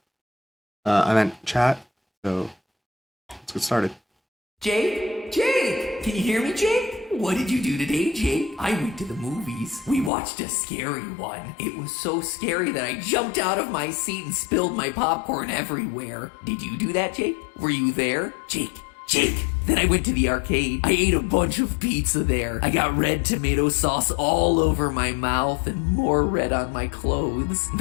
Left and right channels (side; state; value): right; drops out; at 10.1 s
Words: I meant chat, so let's get started. Jake, can you hear me, Jake? What did you do today, Jake? I went to the movies. We watched a scary one. It was so scary that I jumped out of my seat and spilled my popcorn everywhere. Did you do that, Jake? Were you there? Jake. Then I went to the arcade. I ate a bunch of pizza there. I got red tomato sauce all over my mouth and more red on my clothes.